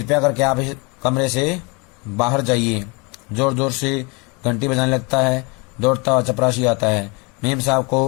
करके आप इस कमरे से बाहर जाइए। जोर जोर से घंटी बजाने लगता है, दौड़ता हुआ चपरासी आता है, मेम साहब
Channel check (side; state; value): right; quieter; 29.6 dB